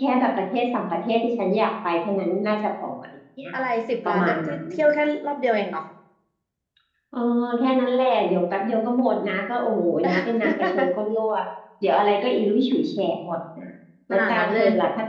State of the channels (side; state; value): both; identical; correlation 1.00